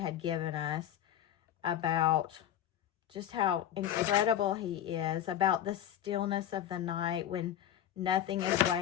given us, about just how incredible he is, about the stillness of the night when nothing is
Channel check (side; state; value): right; quieter; 11.1 dB